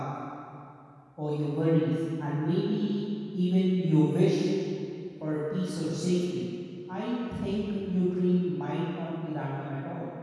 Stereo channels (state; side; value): identical; both; correlation 1.00